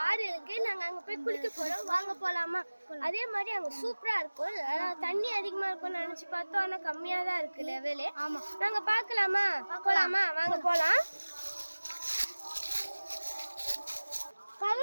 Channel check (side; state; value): both; inverted; correlation -1.00